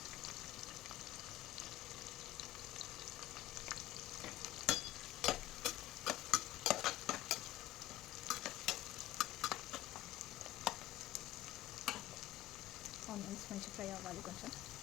ఆనియన్స్ మంచిగా ఫ్రై అవ్వాలి కొంచెం.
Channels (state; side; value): quieter; right; 15.4 dB